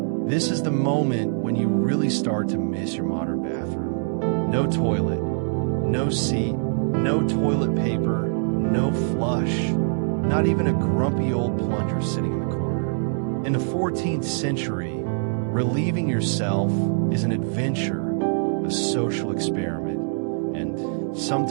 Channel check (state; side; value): silent; left; digital silence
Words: This is the moment when you really start to miss your modern bathroom. No toilet, no seat, no toilet paper, no flush, not even a grumpy old plunger sitting in the corner. In the 14th century, relieving yourself is an adventure, a social experiment, and